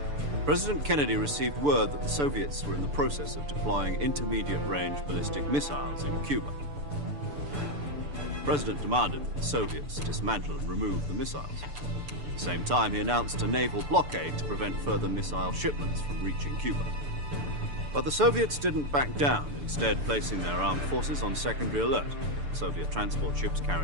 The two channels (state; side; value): late; left; 6.9 ms